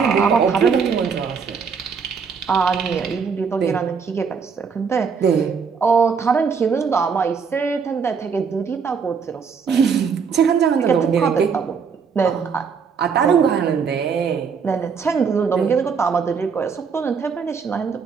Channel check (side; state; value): left; quieter; 6.0 dB